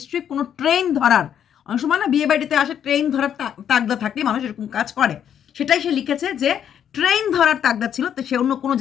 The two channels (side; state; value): right; quieter; 9.2 dB